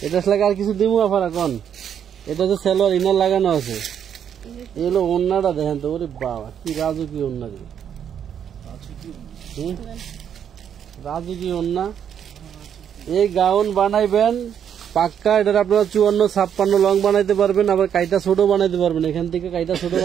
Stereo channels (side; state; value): left; quieter; 8.7 dB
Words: এটা লাগে আর কিছু দিমু আফার এখন। এটা তো সেলোয়ার ইনার লাগানো আছে। এই হলো ওন্নাটা, দেখেন তো, ওরে বাবা কি রাজু, কি ওন্না রে, রাজু কি ওন্না। এই গাউন বানাইবেন পাক্কা, এটার আপনারা 54-56 লং বানাইতে পারবেন, আবার কাইটা ছোট বানাইতে পারবেন। এখান থেকে কাইটা ছোট